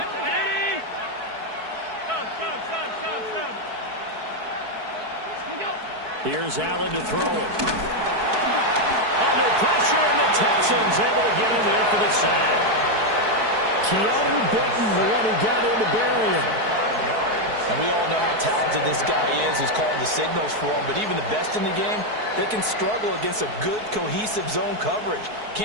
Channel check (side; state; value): left; late; 4.6 ms